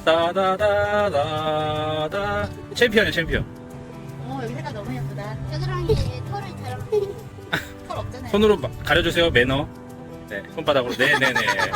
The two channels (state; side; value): identical; both; correlation 1.00